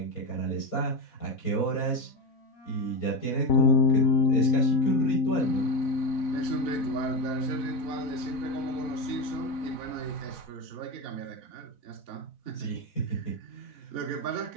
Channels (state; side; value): late; right; 4.1 ms